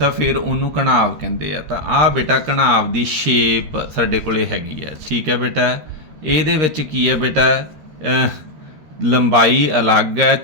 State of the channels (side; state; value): left; late; 13 ms